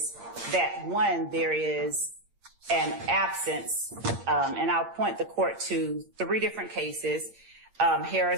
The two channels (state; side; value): late; left; 8.7 ms